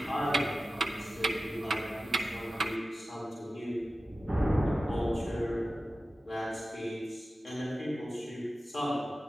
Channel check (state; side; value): normal; both; correlation 0.94